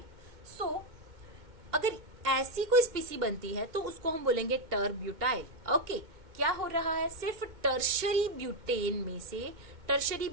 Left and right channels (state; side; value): late; left; 2.1 ms